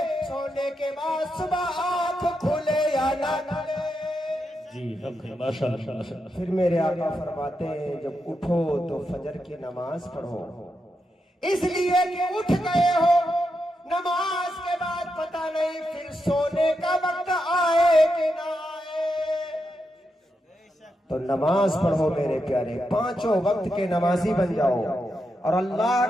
سونے کے بعد صبح آنکھ کھلے یا نہ کھلے۔ پھر میرے آقا فرماتے ہیں جب اٹھو تو فجر کی نماز پڑھو، اس لیے کہ اٹھ گئے ہو، نماز کے بعد پتہ نہیں پھر سونے کا وقت آئے کہ نہ آئے۔ تو نماز پڑھو میرے پیارے، پانچوں وقت کے نمازی بن جاؤ، اور اللہ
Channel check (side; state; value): both; normal; correlation 0.85